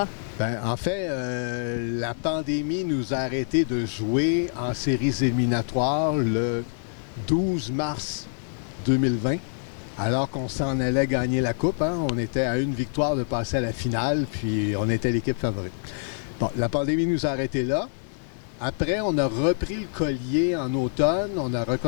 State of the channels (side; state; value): right; silent; digital silence